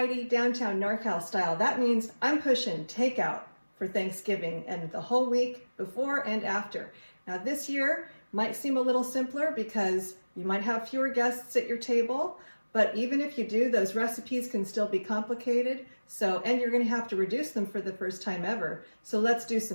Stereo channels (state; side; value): inverted; both; correlation -1.00